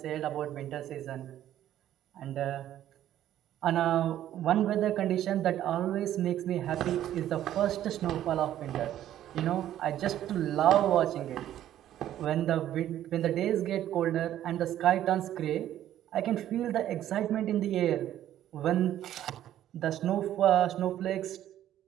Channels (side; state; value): left; quieter; 12.0 dB